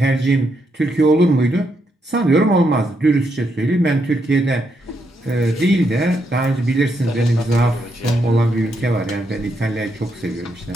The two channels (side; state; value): both; normal; correlation 0.79